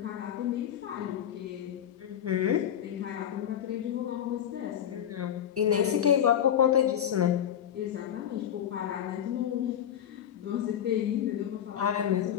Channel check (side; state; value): right; quieter; 9.9 dB